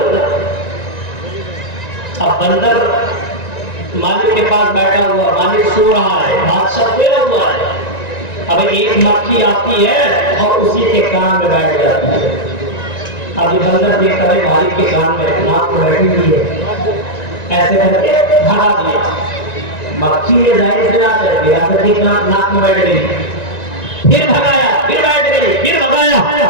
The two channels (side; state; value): right; late; 1.9 ms